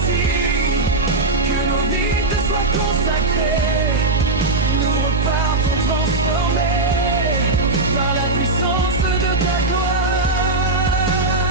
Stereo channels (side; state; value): left; quieter; 3.0 dB